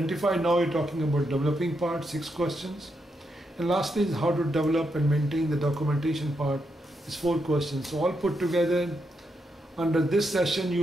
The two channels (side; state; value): both; normal; correlation 0.82